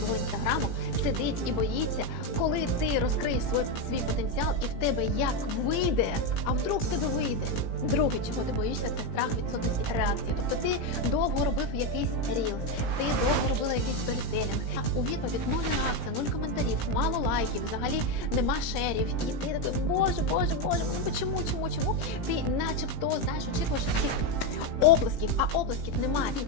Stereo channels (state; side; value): late; right; 18 ms